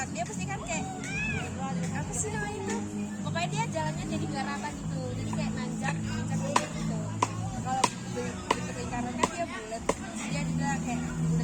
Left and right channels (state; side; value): identical; both; correlation 1.00